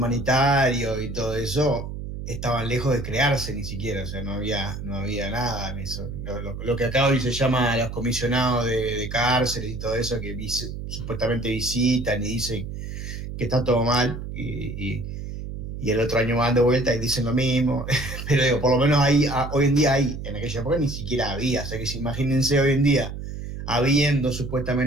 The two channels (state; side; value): noise; right; hum, 7 dB below the sound